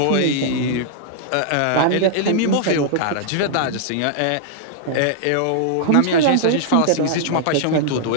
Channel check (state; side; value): different; both; correlation -0.01